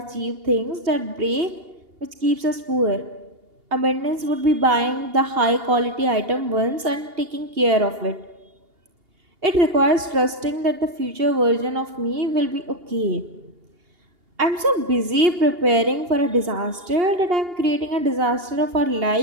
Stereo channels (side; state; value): left; late; 2.8 ms